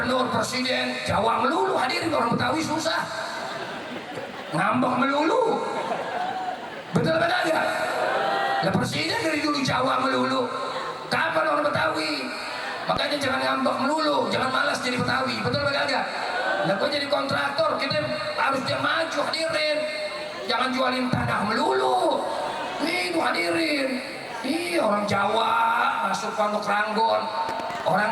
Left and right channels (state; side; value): identical; both; correlation 1.00